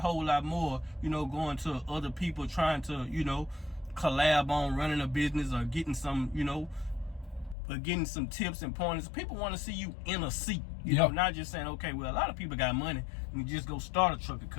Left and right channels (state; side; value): drops out; right; at 7.6 s